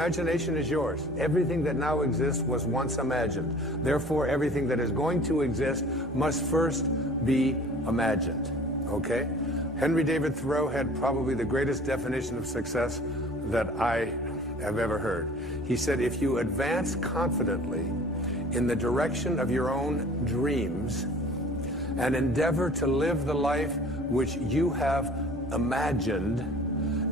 is yours. Everything that now exists was once imagined. Therefore, everything that is going to exist must first be imagined. Okay? Henry David Thoreau had probably the greatest definition of success that I have ever heard. He said, if you advance confidently in the direction of your own dreams and endeavor to live the life which you have imagined,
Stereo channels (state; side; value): normal; both; correlation 0.47